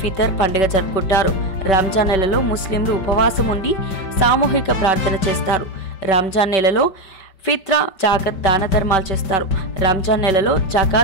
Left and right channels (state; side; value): late; right; 5.2 ms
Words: ఫితర్ పండుగ జరుపుకుంటారు. రంజాన్ నెలలో ముస్లింలు ఉపవాసం ఉండి సామూహిక ప్రార్థన చేస్తారు. రంజాన్ నెలలో ఫిత్రా, జాకత్ దాన ధర్మాలు చేస్తారు. రంజాన్ నెలలో